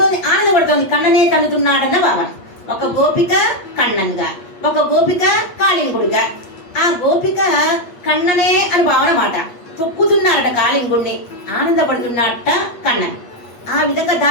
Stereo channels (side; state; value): right; late; 8.4 ms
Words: ఆనందపడుతోంది, కన్ననే తన్నుతున్నాడన్న భావన. ఒక గోపిక కన్నన్గా, ఒక గోపిక కాళింగుడుగా. ఆ గోపిక కన్ననే అని భావన మాట. తొక్కుతున్నారట కాళింగుడిని, ఆనందపడుతున్నట్ట కన్నన్. ఆ విధంగా